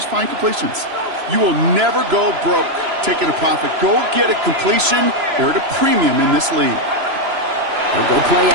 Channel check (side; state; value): left; late; 3.0 ms